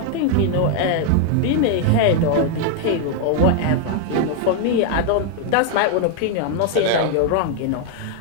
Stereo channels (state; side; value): different; both; correlation 0.00